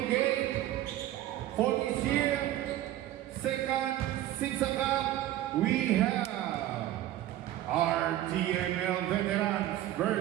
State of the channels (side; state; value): left; quieter; 13.6 dB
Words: game for this year, second SIPSA Cup, we have our TNL veterans